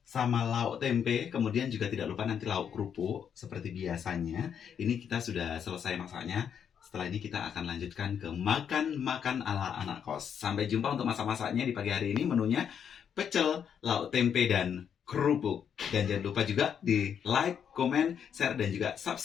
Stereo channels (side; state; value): right; quieter; 8.0 dB